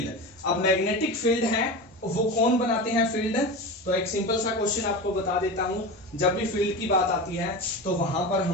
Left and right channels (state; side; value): normal; both; correlation 0.26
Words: अब मैग्नेटिक फील्ड है वो कौन बनाते हैं फील्ड, तो एक सिंपल सा क्वेश्चन आपको बता देता हूं. जब भी फील्ड की बात आती है तो वहां पर